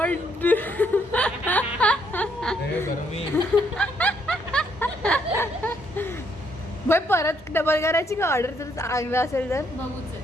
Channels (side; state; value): both; normal; correlation 0.71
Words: हे गरमी. भाई परत डबल करायची का ऑर्डर जर चांगलं असेल तर. बघूच